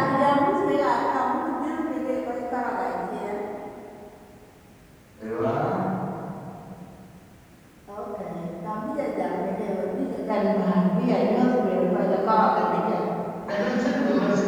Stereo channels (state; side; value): identical; both; correlation 1.00